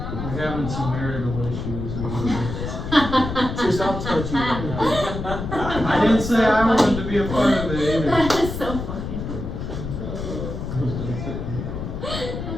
We're having some marital issues. So stop touching me. I didn't say I wanted to be a part of it either. That is so funny.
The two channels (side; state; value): left; noise; rumble, 5 dB below the sound